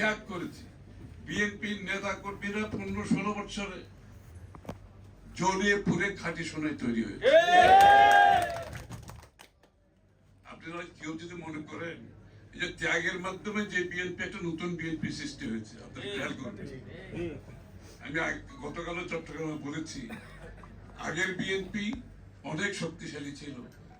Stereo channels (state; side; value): identical; both; correlation 1.00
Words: করেছি। বিএনপির নেতা কর্মীরা 15-16 বছরে জ্বলিয়ে পুড়ে খাঁটি সোনায় তৈরি হয়েছে। আপনারা কেউ যদি মনে করেন এই যে ত্যাগের মাধ্যমে যে বিএনপি একটা নতুন বিএনপি সৃষ্টি হয়েছে, আপনারা খেয়াল করবেন। আমি গতকালও চট্টগ্রামে বলেছি, আগের বিএনপি অনেক শক্তিশালী ছিল।